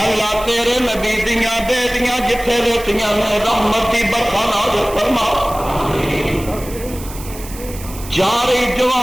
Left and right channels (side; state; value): right; noise; hiss, 15 dB below the sound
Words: اللہ تیرے نبی دیاں بیٹیاں جتھے لیٹیاں نے رحمت دی برکھا نازل فرما۔ چارے